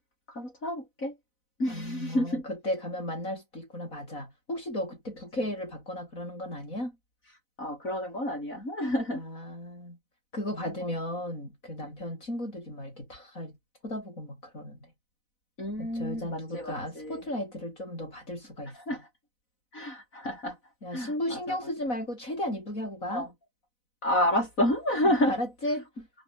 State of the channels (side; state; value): right; late; 4.0 ms